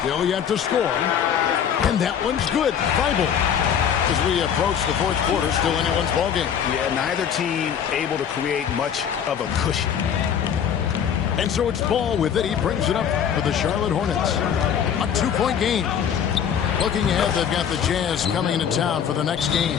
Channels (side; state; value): right; quieter; 8.3 dB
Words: yet to score. And that one's good. Bible. As we approach the fourth quarter, still anyone's ball game. Yeah, neither team able to create much of a cushion. And so it's Ball with it. He brings it up for the Charlotte Hornets. A 2-point game. Looking ahead, they've got the Jazz coming into town for the next game.